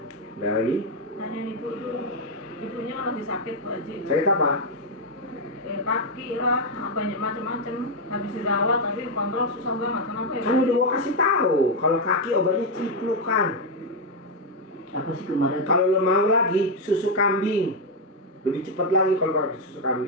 Udah lagi? Tanya ibu tuh, ibunya kan lagi sakit Pak Haji. Sakit apa? Kaki lah, banyak macam-macam. Habis dirawat tapi kontrol susah banget. Kenapa ya? Kan udah gua kasih tahu, kalau kaki obatnya ciplukan. Apa sih kemarin? Kalau lo mau lagi susu kambing, lebih cepat lagi kalau pakai susu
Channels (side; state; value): both; normal; correlation 0.02